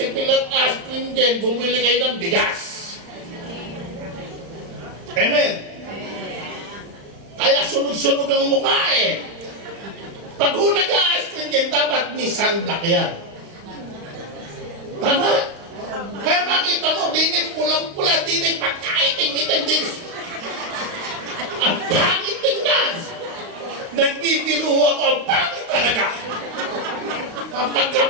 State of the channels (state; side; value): late; left; 35 ms